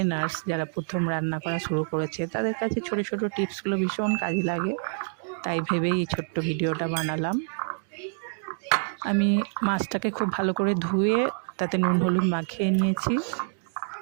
যারা প্রথম রান্না করা শুরু করেছে, তাদের কাছে ছোট ছোট টিপসগুলো ভীষণ কাজে লাগে। তাই ভেবেই এই ছোট্ট ভিডিওটা বানালাম। আমি মাছটাকে খুব ভালো করে ধুয়ে তাতে নুন হলুদ মাখিয়ে নিয়েছি।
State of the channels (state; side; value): silent; left; digital silence